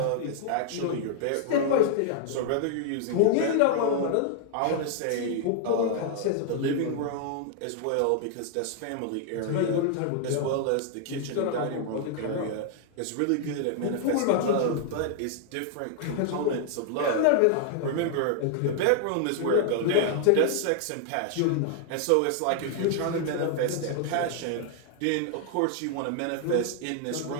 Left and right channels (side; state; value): both; different; correlation 0.00